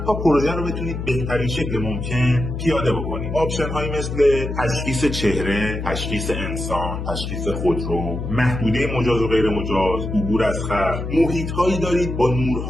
تا پروژه رو بتونید بهترین شکل ممکن پیاده بکنید. آپشن هایی مثل تشخیص چهره، تشخیص انسان، تشخیص خودرو، محدوده مجاز و غیر مجاز، عبور از خط. محیط هایی دارید با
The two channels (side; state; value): left; noise; hum, 5 dB below the sound